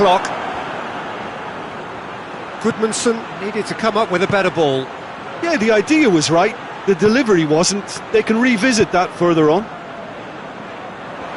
Goodmanson needed to come up with a better ball. Yeah, the idea was right. The delivery wasn't. They can revisit that further on.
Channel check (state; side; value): identical; both; correlation 1.00